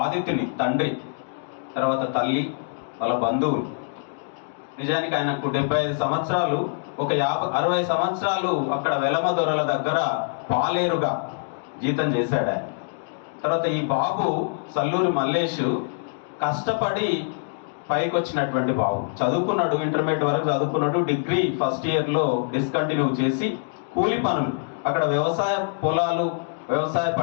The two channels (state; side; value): silent; right; digital silence